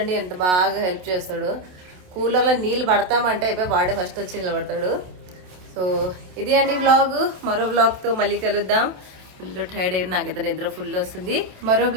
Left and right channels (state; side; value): late; left; 27 ms